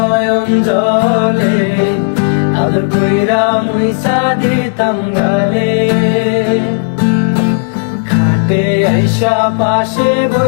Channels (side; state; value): right; silent; digital silence